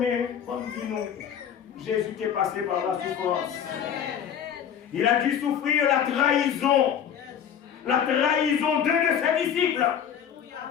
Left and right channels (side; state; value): right; quieter; 8.6 dB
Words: comme dit nous, Jésus est passé par la souffrance. Il a dû souffrir la trahison d'un de ses disciples.